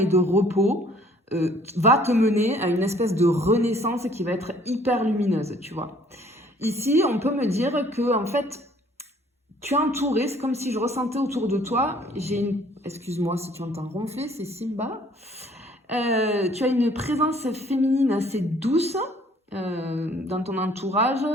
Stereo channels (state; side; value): normal; both; correlation 0.58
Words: de repos va te mener à une espèce de renaissance qui va être hyper lumineuse, tu vois. Ici, on peut me dire que en fait, tu es entouré, c'est comme si je ressentais autour de toi, j'ai une... Excuse-moi si tu entends ronfler, c'est Simba. Tu as une présence féminine assez douce dans ton entourage,